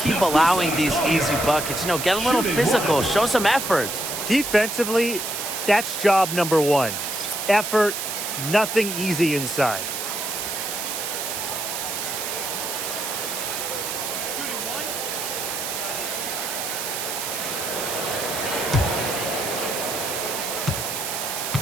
allowing these easy buckets. You know, get a little physical, show some effort. Defensively, that's job number 1. Effort, nothing easy inside.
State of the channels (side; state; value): right; noise; hiss, 4 dB below the sound